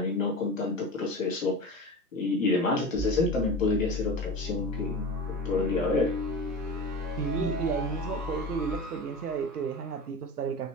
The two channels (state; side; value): normal; both; correlation 0.30